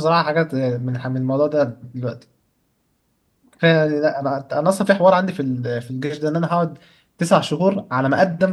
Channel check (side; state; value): both; identical; correlation 1.00